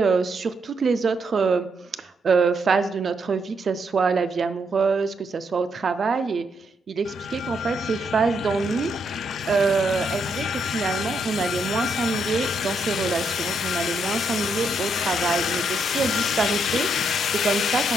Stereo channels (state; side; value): normal; both; correlation 0.77